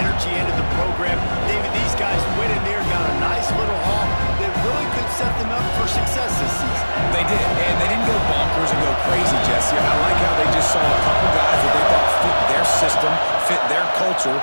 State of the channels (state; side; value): inverted; both; correlation -1.00